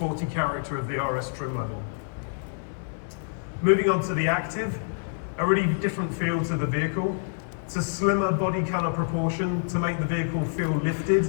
character of the RS trim level. Moving on to the Active, a really different feel to the vehicle. It's a slimmer body color proportion to make the vehicle feel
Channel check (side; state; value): right; silent; digital silence